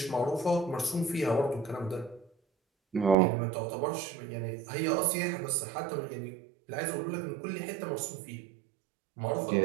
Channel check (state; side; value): drops out; left; at 3.2 s